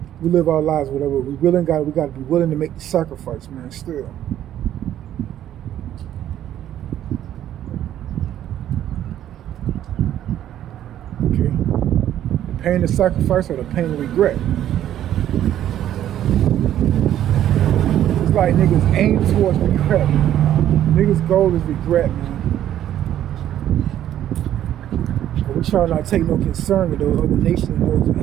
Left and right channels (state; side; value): quieter; left; 11.5 dB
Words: We live our lives, whatever. We got to be willing to make the sacrifice, man, still. Okay. The pain of sacrifice or the pain of regret. It's like niggas aim towards regret. Niggas' goal is regret, man. But we try not to take no concern with those other nations and those who